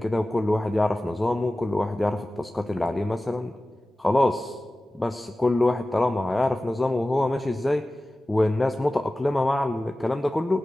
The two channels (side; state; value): both; normal; correlation 0.96